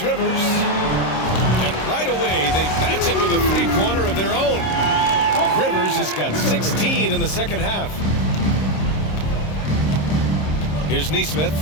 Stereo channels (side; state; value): right; late; 26 ms